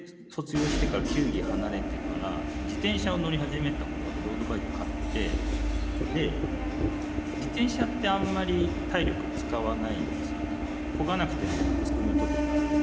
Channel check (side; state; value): both; identical; correlation 1.00